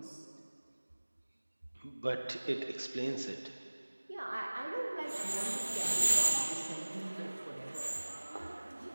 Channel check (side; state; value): both; inverted; correlation -1.00